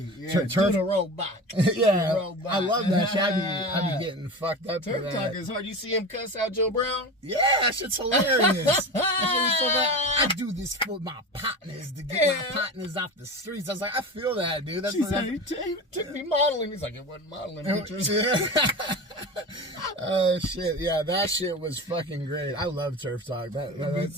Turf the robot. Yeah, robot. I love that shit. I be getting fucked up. Turf Talk is hard. You see him cuss out Joe Brown? Yeah, that shit's hilarious. I do this for my partners to get my partners off the streets. I was like, I feel that, dude. That's he took me modeling. He's like, it wasn't modeling pictures. Oh shit, yeah, that shit was fucking great. I love Turf Talk. Me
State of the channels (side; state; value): both; normal; correlation 0.29